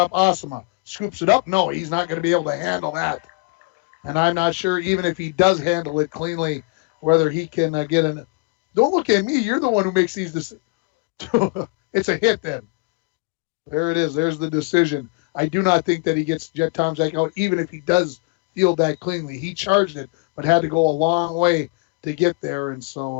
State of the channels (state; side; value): quieter; right; 29.2 dB